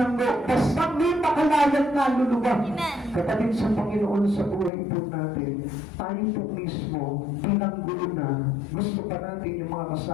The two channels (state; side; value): drops out; right; at 4.7 s